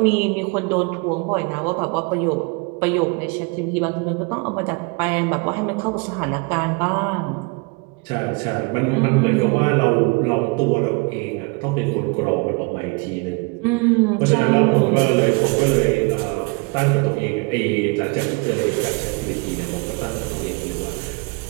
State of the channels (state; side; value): quieter; left; 29.8 dB